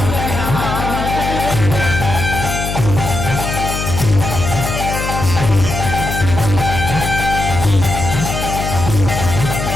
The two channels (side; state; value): left; noise; hum, 4 dB below the sound